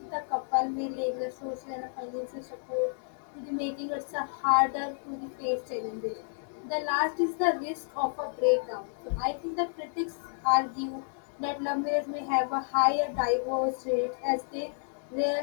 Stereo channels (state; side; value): silent; right; digital silence